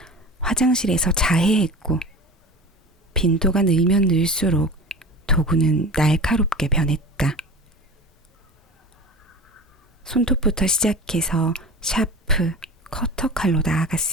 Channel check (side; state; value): both; normal; correlation 0.34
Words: 화장실에서 자해했고 빈도가 늘면 늘수록 도구는 날카롭게 변했다. 손톱부터 시작해서 샤프, 커터 칼로